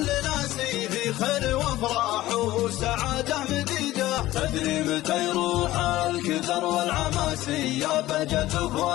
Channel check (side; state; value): right; quieter; 16.2 dB